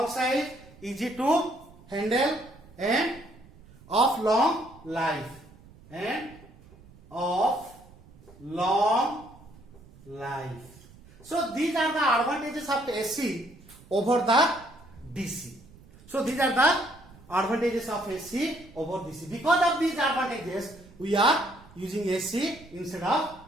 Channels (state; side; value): noise; right; rumble, 23 dB below the sound